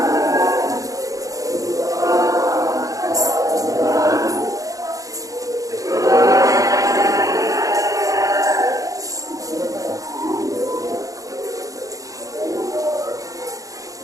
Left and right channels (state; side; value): late; left; 0.17 ms